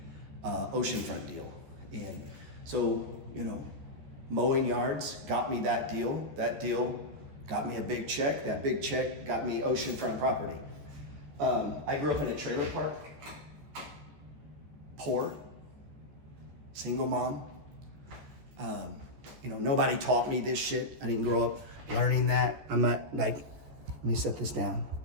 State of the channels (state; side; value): late; left; 14 ms